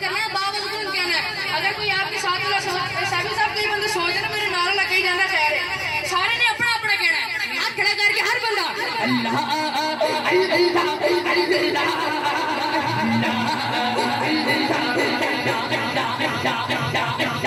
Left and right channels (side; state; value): both; identical; correlation 1.00